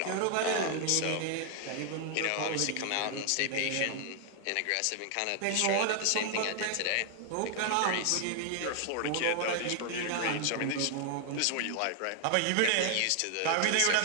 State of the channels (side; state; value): both; different; correlation 0.00